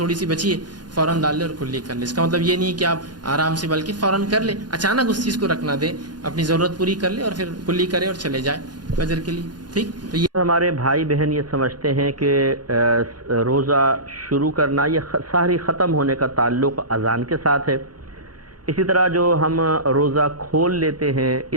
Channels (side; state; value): left; late; 0.70 ms